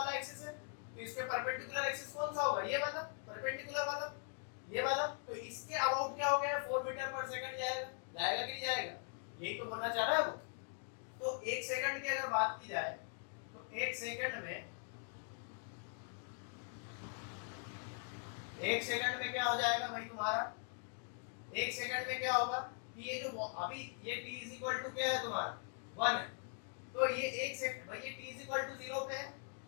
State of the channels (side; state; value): right; silent; 50 dB below the other